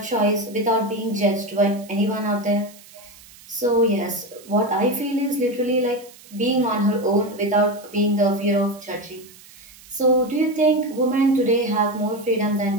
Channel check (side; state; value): right; noise; hiss, 22 dB below the sound